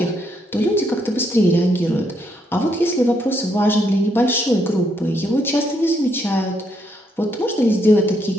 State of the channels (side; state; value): both; normal; correlation 0.75